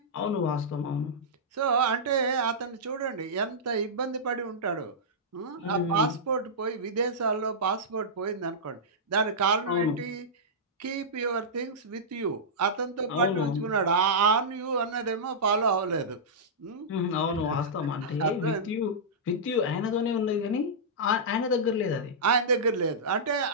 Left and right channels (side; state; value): both; normal; correlation -0.13